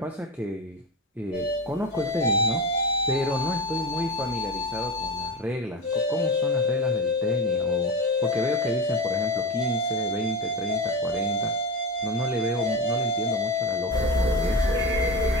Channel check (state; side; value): normal; both; correlation 0.22